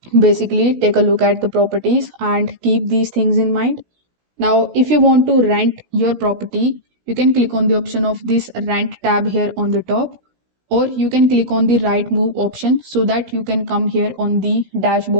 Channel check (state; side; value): late; left; 16 ms